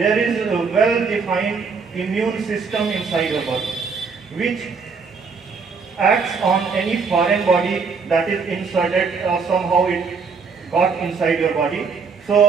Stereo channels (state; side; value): quieter; left; 5.1 dB